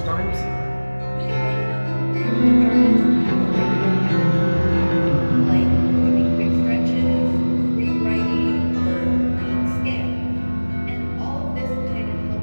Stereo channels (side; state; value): both; inverted; correlation -1.00